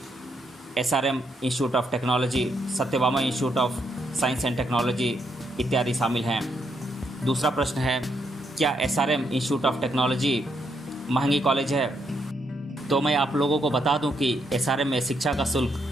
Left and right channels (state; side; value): normal; both; correlation 0.77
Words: SRM institute of technology, Satyabhama institute of science and technology इत्यादि शामिल हैं। दूसरा प्रश्न है, क्या SRM इंस्टीट्यूट ऑफ टेक्नोलॉजी महंगी कॉलेज है? तो मैं आप लोगों को बता दूं कि SRM में शिक्षा का शुल्क